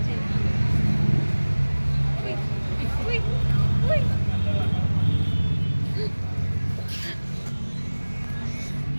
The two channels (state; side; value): inverted; both; correlation -1.00